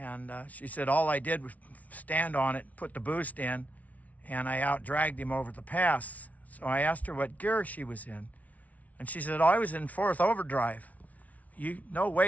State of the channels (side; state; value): right; late; 0.071 ms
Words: she said all I did was stand on it, put the boost in, and I out-dragged him over the pass. So I asked her what gear she was in, and she said, oh, I was in 4th overdrive. No